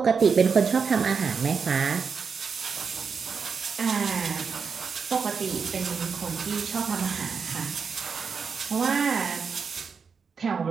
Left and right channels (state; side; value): quieter; left; 5.7 dB